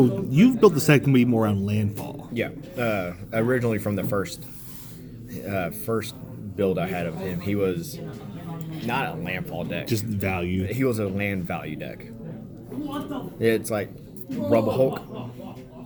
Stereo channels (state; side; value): identical; both; correlation 1.00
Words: you've built the deck to be more around landfall. Yeah. Originally from the first build I had of him, he was not a landfall deck. Just value. He was a land value deck. It's like Rubble Hulk.